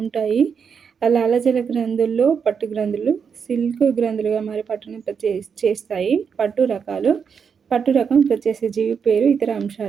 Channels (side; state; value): left; quieter; 6.5 dB